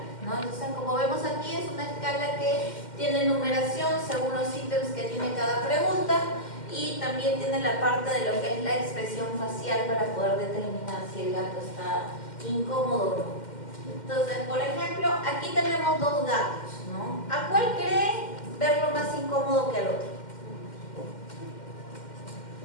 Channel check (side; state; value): right; late; 2.1 ms